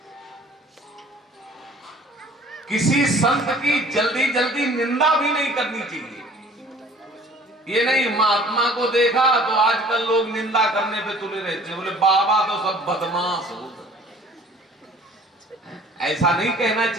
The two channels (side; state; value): both; normal; correlation 0.51